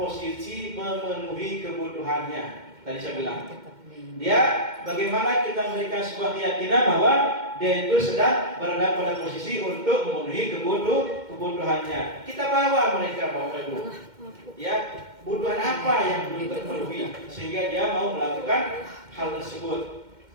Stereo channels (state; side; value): late; left; 2.1 ms